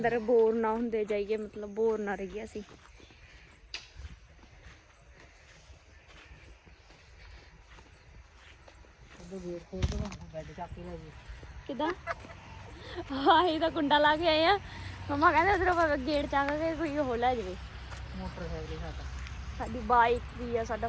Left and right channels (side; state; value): both; identical; correlation 1.00